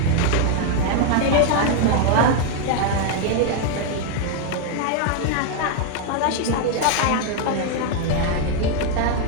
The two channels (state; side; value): different; both; correlation 0.01